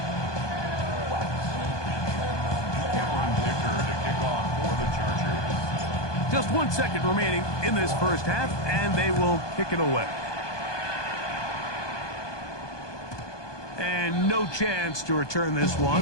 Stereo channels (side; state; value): right; late; 1.2 ms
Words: Just 1 second remaining in this first half, and they will kick it away. And no chance to return this